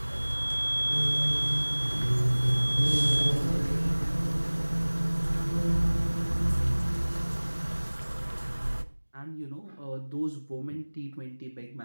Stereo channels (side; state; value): both; inverted; correlation -1.00